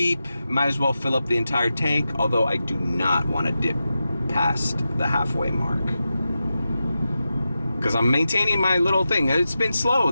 Might as well fill up the entire tank, although I do not want to dip past the halfway mark. Because I'm maintaining my little thing. It's been slow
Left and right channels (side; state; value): both; inverted; correlation -0.91